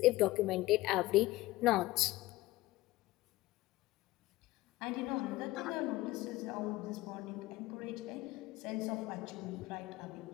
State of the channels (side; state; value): right; quieter; 18.2 dB